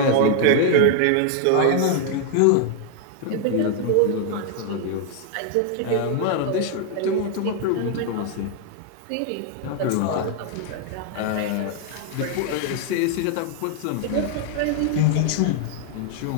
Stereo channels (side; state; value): both; different; correlation 0.00